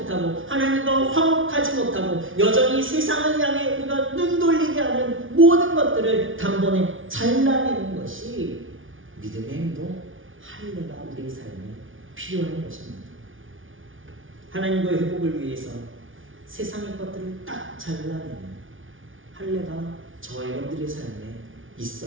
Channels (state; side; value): late; left; 0.57 ms